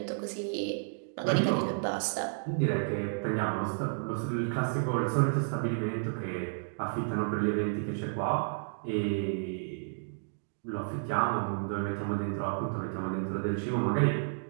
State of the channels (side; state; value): left; silent; digital silence